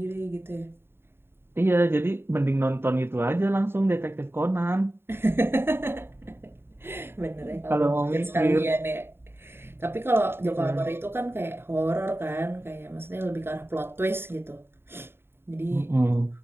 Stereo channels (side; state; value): left; late; 0.11 ms